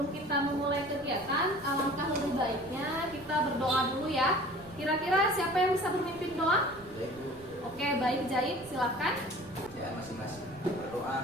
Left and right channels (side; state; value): right; noise; rumble, 23 dB below the sound